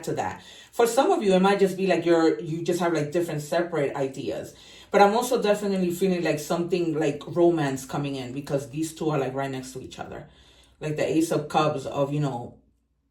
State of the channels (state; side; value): identical; both; correlation 1.00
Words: to that. For some of you, it might just be like you just have like different separate ideas. But I'm also definitely feeling like something like romance coming in, because these 2 are like right next to each other. Like the Ace of Cups of,